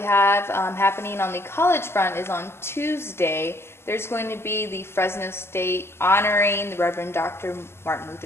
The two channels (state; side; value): late; right; 0.12 ms